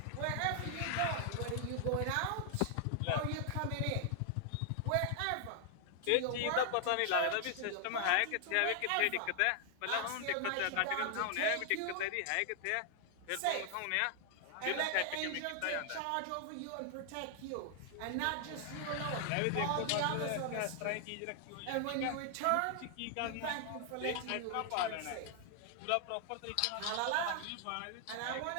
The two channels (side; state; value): both; different; correlation 0.00